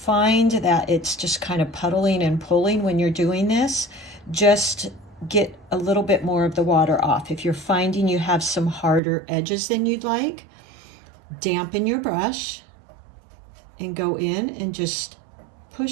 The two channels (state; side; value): drops out; left; at 9.0 s